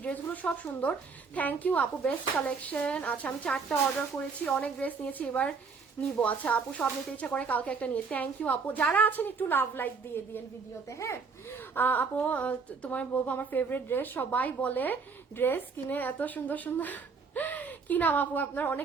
ড্রেসগুলো সব সুন্দর, থ্যাংক ইউ আপু, বেস্ট কালেকশন। আচ্ছা, আমি 4টা অর্ডার করেছি, অনেক ড্রেস নিয়েছি, এবার নিবো। আচ্ছা আপু, সব নিতে ইচ্ছা করে, কালকে একটা নিয়ে, থ্যাংক ইউ আপু। যারা আছেন একটু লাভ লাইক দিয়ে দিয়েন ভিডিওতে। হ্যাঁ আপু, তোমার বলবো আমার ফেভারিট ড্রেস, সবাই বলে ড্রেস কিনে এত সুন্দর সুন্দর। কি নাম আপু আপনার?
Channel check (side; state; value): left; quieter; 5.0 dB